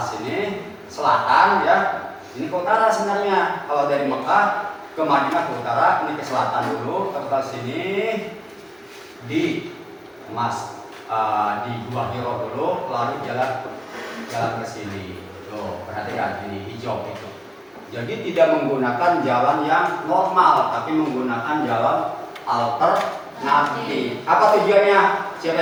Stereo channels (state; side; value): identical; both; correlation 1.00